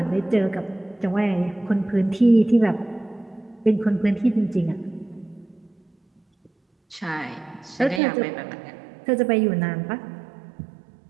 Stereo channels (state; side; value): drops out; left; at 8.0 s